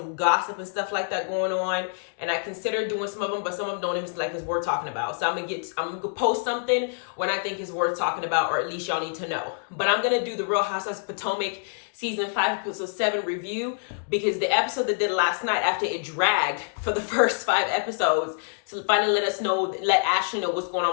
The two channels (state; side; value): silent; right; digital silence